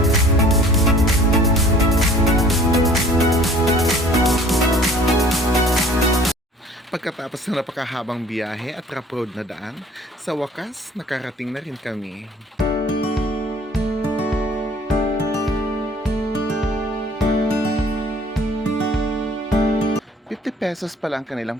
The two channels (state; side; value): normal; both; correlation 0.51